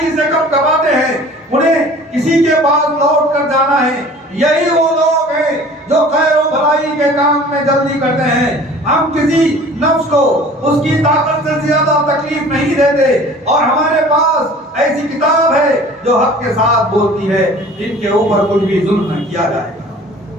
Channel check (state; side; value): normal; both; correlation 0.46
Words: سے کب کباتے ہیں، انہیں کسی کے پاس لوٹ کر جانا ہے۔ یہی وہ لوگ ہیں جو خیر و بھلائی کے کام میں جلدی کرتے ہیں۔ ہم کسی نفس کو اس کی طاقت سے زیادہ تکلیف نہیں دیتے، اور ہمارے پاس ایسی کتاب ہے جو حق کے ساتھ بولتی ہے، جن کے اوپر کچھ بھی ظلم نہ کیا جائے گا۔